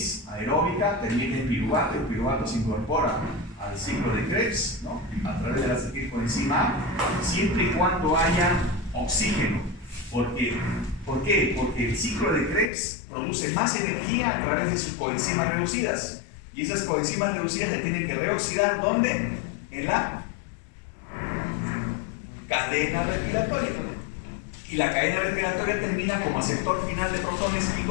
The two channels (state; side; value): drops out; right; at 12.7 s